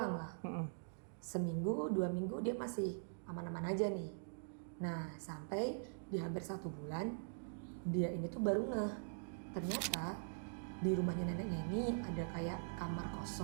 lah. Seminggu, 2 minggu dia masih aman-aman aja nih. Nah sampai di hampir 1 bulan dia ini tuh baru ngeh, ternyata di rumahnya neneknya ini ada kayak kamar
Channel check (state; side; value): silent; left; digital silence